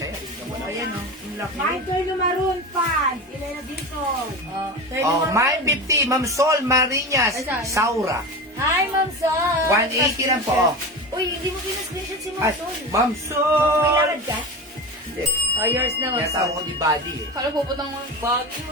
yan. Tignan mo na. Ayan yung laki. Michael Lumaron, fans. Elena Dicon. Oh, Mine 50. Ma'am Sol Marinas. Saura. Hi, Ma'am Sol! 180 lang po. Uy, hindi mo pinascreenshot si Ma'am Ay, Sol. Ma'am May Sol! lakad ka? Hindi. Oh, yours na, Ma'am Kaya tawag Sol. ko ni Buddy eh. Kala puputang bagyo.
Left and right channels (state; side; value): normal; both; correlation 0.26